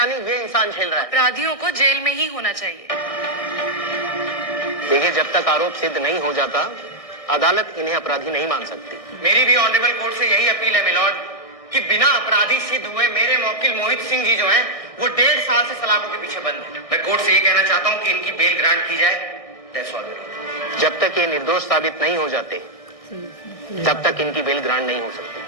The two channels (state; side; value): late; right; 1.6 ms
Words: ये इंसान झेल रहा है। अपराधियों को जेल में ही होना चाहिए। देखिए, जब तक आरोप सिद्ध नहीं हो जाता अदालत इन्हें अपराधी नहीं मान सकती। मेरी भी ऑनरेबल कोर्ट से यही अपील है मिलॉर्ड कि बिना अपराधी सिद्ध हुए मेरे मौकिल मोहित सिंह जी जो हैं वो 1.5 साल से सलाखों के पीछे बंद हैं। मैं कोर्ट से ये कहना चाहता हूँ कि इनकी बेल ग्रांट की जाए। That's all. जब तक ये निर्दोष साबित नहीं हो जाते तब तक इनकी बेल ग्रांट नहीं हो